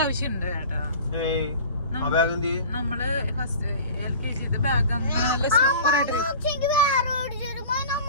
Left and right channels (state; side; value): inverted; both; correlation -0.40